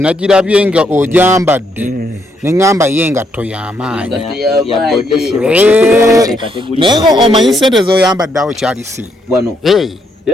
nga ogyambadde ne ngamba ye engatto y'amaanyi. Naye omanyi ssente z'oyambadde awo kyali si. Wano.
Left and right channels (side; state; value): both; normal; correlation 0.75